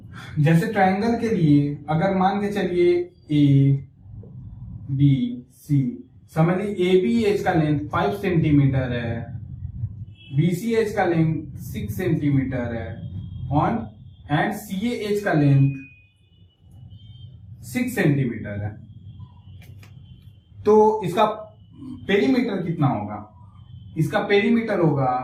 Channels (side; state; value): both; identical; correlation 1.00